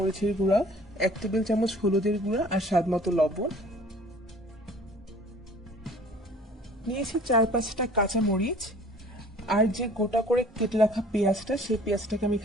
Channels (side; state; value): both; normal; correlation 0.51